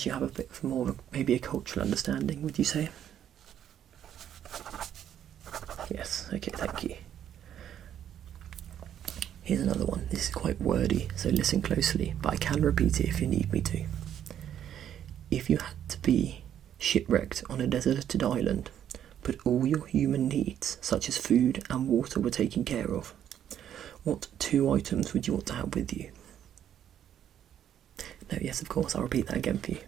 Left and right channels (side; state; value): left; quieter; 10.0 dB